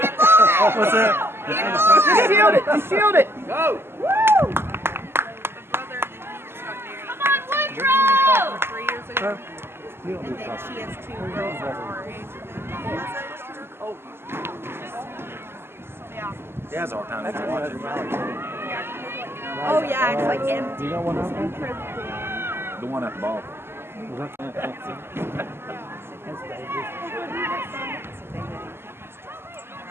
What's that? Just shield it. Just shield it. Go. Come on, Woodrow! 3 years ago. And then she has 2 girls that are our age. He has a hard time watching. Oh yeah, it's like empty. You know what I'm The one at the ball.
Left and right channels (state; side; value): late; left; 0.12 ms